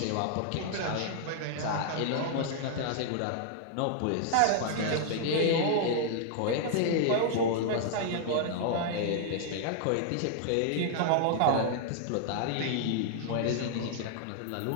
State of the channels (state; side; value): different; both; correlation -0.01